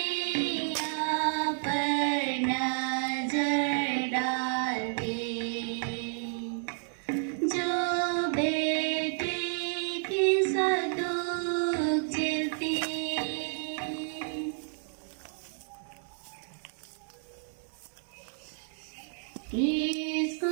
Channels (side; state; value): left; silent; 57 dB below the other